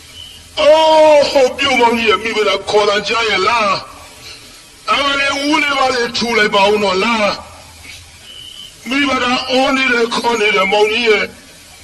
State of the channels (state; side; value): identical; both; correlation 1.00